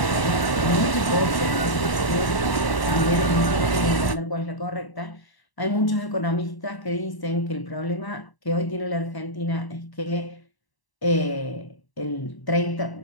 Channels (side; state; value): right; late; 1.0 ms